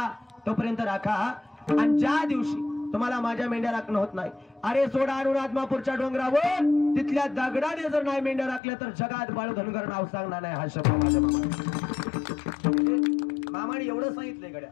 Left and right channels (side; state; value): right; drops out; at 8.6 s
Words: तोपर्यंत राखा, आणि ज्या दिवशी तुम्हाला माझ्या मेंढ्या राखणं होत नाही, अरे सोडा आणून आदमापूरच्या डोंगरावर तिथल्या दगडाने जर नाही मेंढ्या राखल्या तर जगात बाळू धनगर नाव सांगणार नाही. हा शब्द माझ्या मामाने एवढं सांगितलंय गड्या,